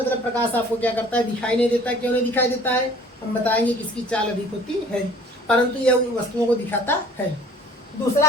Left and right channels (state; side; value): normal; both; correlation 0.50